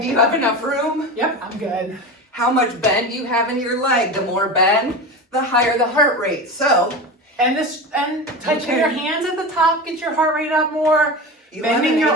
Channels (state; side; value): normal; both; correlation 0.26